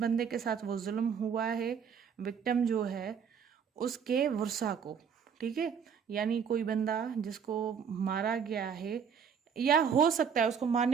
के साथ वो जुल्म हुआ है, विक्टिम जो है उसके वर्सा को, ठीक है। यानी कोई बंदा जिसको मारा गया है, या हो सकता है उसको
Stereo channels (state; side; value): quieter; left; 7.1 dB